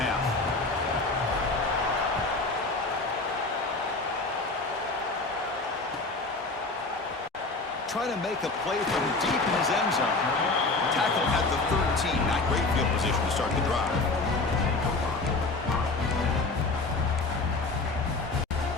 Trying to make a play from deep in his end zone. Tackle at the 13. Not great field position to start the drive.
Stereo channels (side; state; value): right; quieter; 3.5 dB